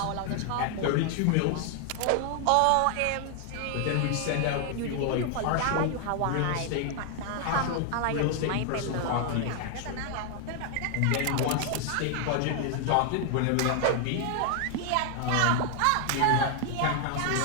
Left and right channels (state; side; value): different; both; correlation 0.00